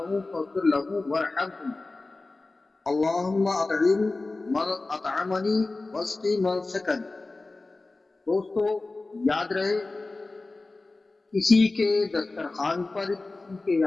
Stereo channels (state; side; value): quieter; right; 3.3 dB